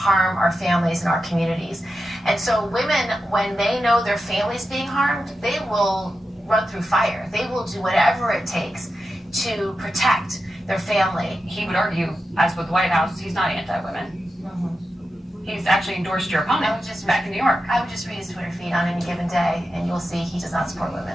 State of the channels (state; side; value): normal; both; correlation 0.90